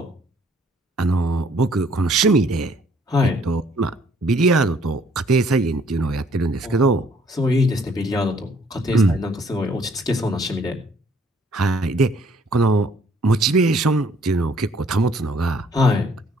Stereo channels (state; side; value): normal; both; correlation 0.62